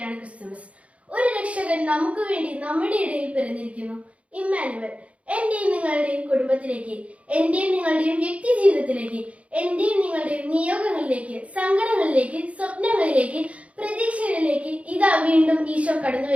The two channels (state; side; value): late; left; 0.064 ms